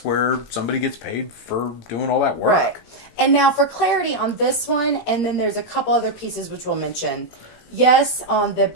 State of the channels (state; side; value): late; right; 17 ms